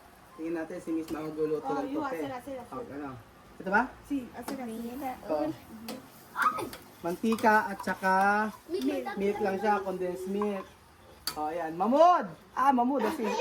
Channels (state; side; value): identical; both; correlation 1.00